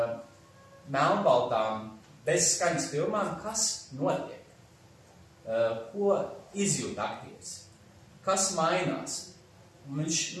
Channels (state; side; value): identical; both; correlation 1.00